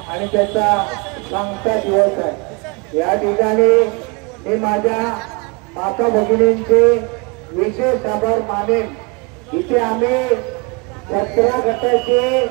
आणि त्याचा सांगता दिवस आहे. या ठिकाणी मी माझ्या माता भगिनींचे विशेष आभार मानेन. इथे आम्ही 17 गटाचे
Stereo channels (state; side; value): quieter; left; 30.2 dB